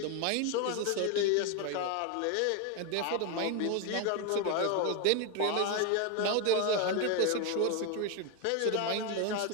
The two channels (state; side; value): different; both; correlation 0.01